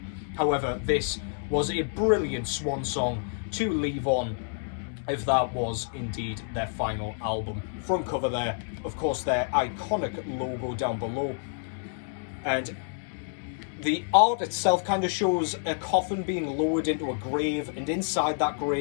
However, this was a brilliant swan song to leave on, if that was indeed their final album. Front cover there, of course, their iconic logo down below. And the art itself kind of shows a coffin being lowered into a grave, and inside that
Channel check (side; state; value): right; silent; digital silence